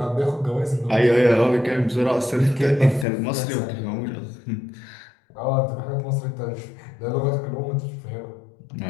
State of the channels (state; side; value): drops out; right; at 3.1 s